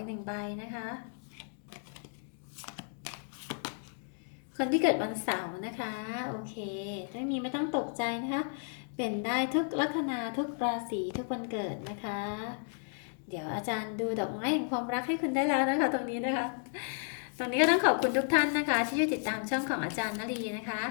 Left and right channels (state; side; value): silent; right; 56 dB below the other